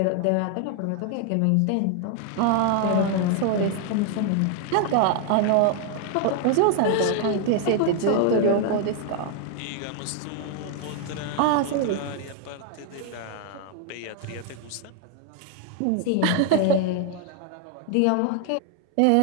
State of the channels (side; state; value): both; different; correlation 0.00